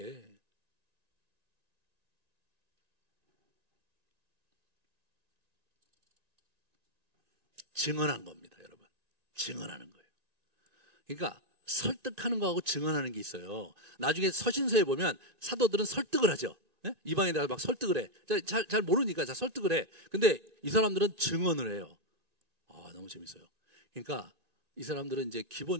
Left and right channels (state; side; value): late; left; 2.5 ms